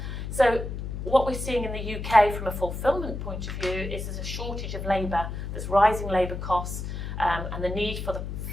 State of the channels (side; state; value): left; noise; hum, 6 dB below the sound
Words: So what we're seeing in the UK from a fulfilment point of view is there's a shortage of labour, there's rising labour costs, and the need for the